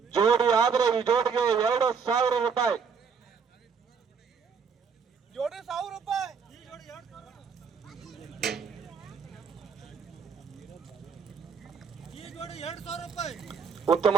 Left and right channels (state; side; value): quieter; left; 6.0 dB